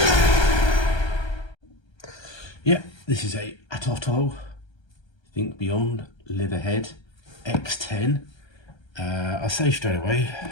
Yeah, this is a ATOTO Think Beyond Live Ahead X10. I'll say straight away,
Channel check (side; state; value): right; late; 1.3 ms